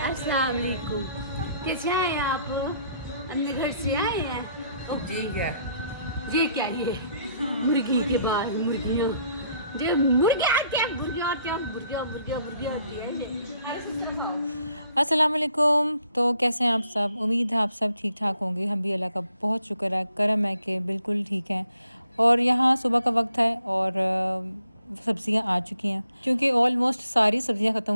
अस्सलाम वालेकुम। कैसे आए हैं आप? अपने घर से आए हैं? जी क्या? ये क्या ये मुर्गी के बाद मुर्गियाँ जो मुर्गे आते हैं मुर्गियाँ आते हैं मुर्गियाँ मुर्गियाँ मुर्गियाँ आती है अस्सलाम वालेकुम। तो कैसे हैं आप सब? उम्मीद है आप सब ठीक ठाक होंगे। हम भी अल्लाह का बहुत शुक्र है, करम है कि बिल्कुल ठीक हैं। और यहाँ सुबह का वक्त है और सब्ज़ियाँ आ चुकी हैं क्योंकि ऑलमोस्ट सारी सब्ज़ियाँ ख़त्म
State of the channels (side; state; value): both; inverted; correlation -0.69